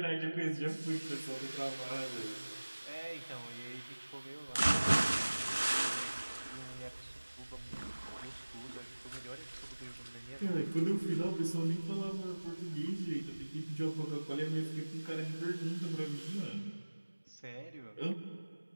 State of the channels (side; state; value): both; inverted; correlation -1.00